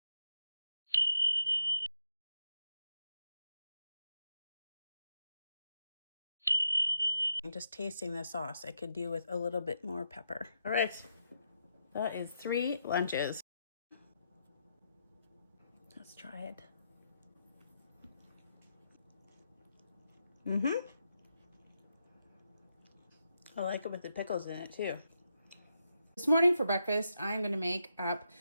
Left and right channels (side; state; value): both; inverted; correlation -0.83